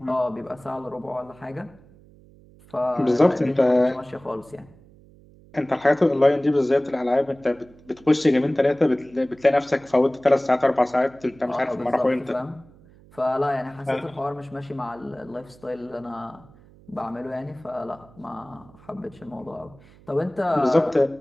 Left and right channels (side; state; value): right; noise; hum, 25 dB below the sound